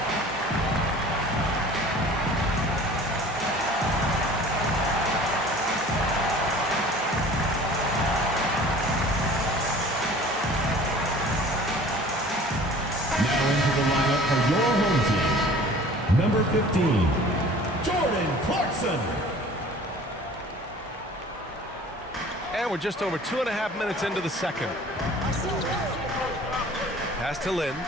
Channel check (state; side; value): normal; both; correlation 0.46